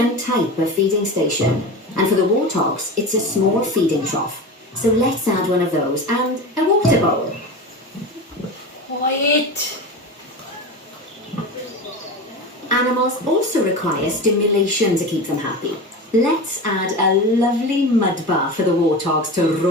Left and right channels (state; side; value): normal; both; correlation 0.27